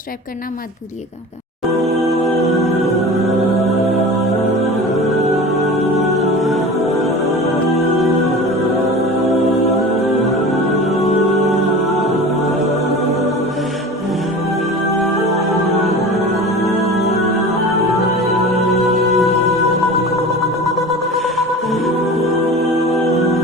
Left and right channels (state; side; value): normal; both; correlation 0.35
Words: करना मत भूलिएगा।